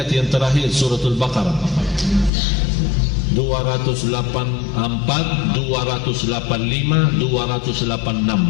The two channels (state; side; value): drops out; right; at 2.3 s